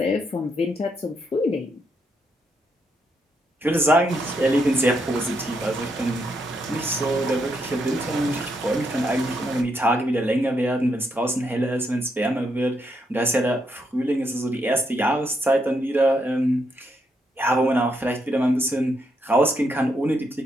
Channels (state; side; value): normal; both; correlation 0.78